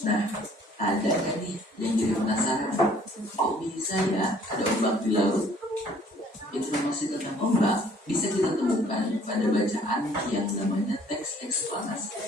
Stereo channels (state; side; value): normal; both; correlation 0.58